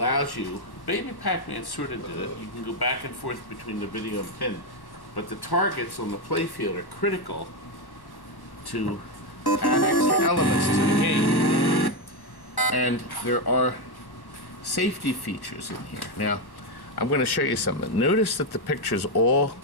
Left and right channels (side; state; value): right; late; 1.1 ms